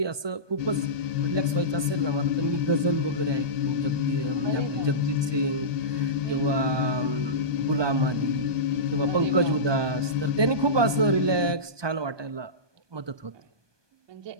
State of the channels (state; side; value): late; left; 1.2 ms